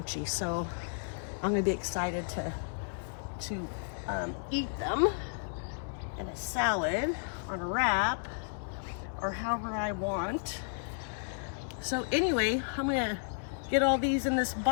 so I'm gonna be excited to eat them in a salad, on a wrap, or however I want. So anyway, I'm gonna get all these in this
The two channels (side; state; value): right; silent; digital silence